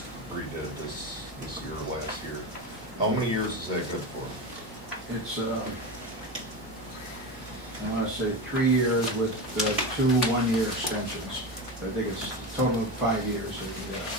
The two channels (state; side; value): normal; both; correlation 0.21